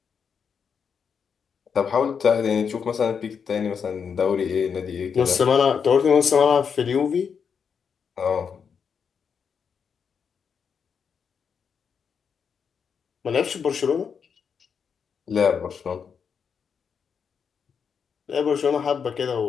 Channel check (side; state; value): right; quieter; 6.6 dB